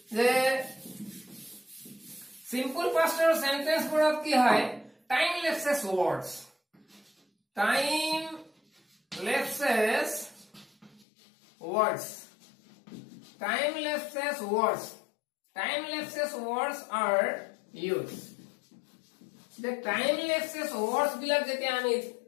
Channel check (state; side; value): drops out; right; at 11.1 s